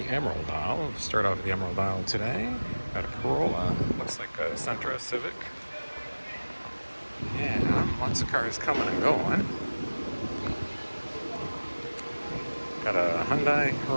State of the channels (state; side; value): inverted; both; correlation -1.00